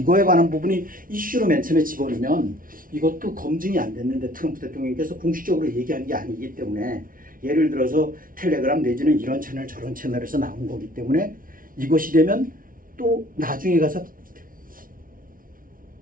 관한 부분이 이슈로 맨 처음에 집어넣으면 이것도 검증이 안 됐는데 트럼프 대통령께서 공식적으로 얘기한 게 아니기 때문에 예를 들어서 텔레그램 내지는 이런 채널 저런 채널에서 나온 거기 때문에 이것이 되면 또 나중에 가서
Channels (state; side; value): late; left; 0.40 ms